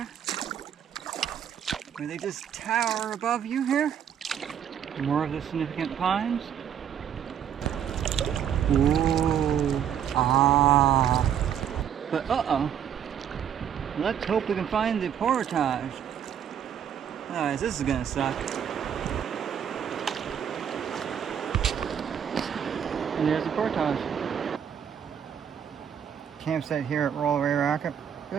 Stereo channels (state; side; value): quieter; left; 8.9 dB